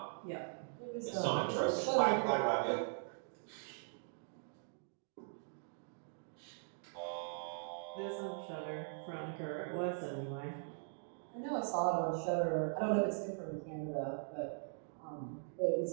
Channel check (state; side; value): silent; left; digital silence